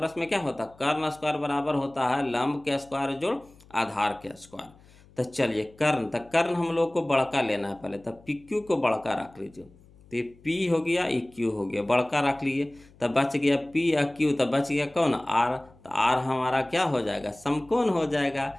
में क्या होता, कर्ण स्क्वायर बराबर होता है लंब के स्क्वायर जोड़ आधार के स्क्वायर। तो चलिए कर्ण, तो कर्ण हम लोग को बड़का लेना है पहले, तब पी क्यू को बड़का रख लीजिए, तो ये पी हो गया, ये क्यू हो गया, बड़का रख लिए, तब बच गया पी या क्यू, तब बच गया कौन, आर। तो आर हमारा क्या हो जाएगा, समकोण हो जाएगा।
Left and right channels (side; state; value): left; noise; hum, 26 dB below the sound